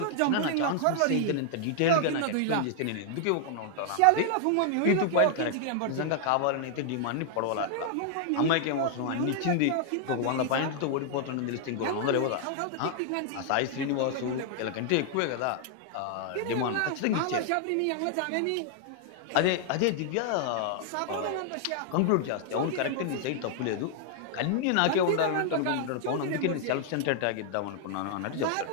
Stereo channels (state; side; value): different; both; correlation 0.00